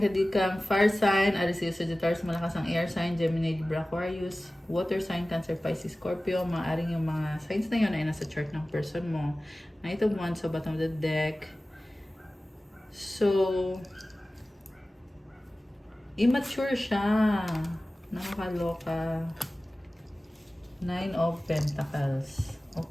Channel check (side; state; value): both; normal; correlation 0.97